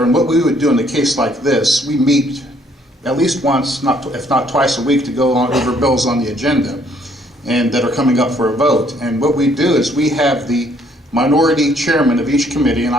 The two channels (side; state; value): both; normal; correlation 0.65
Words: and what we would do in a case like this, we meet at least once, if not twice a week, to go over bills on the agenda and that are coming up for a vote. And what we do is we have the minority chairman of each committee, and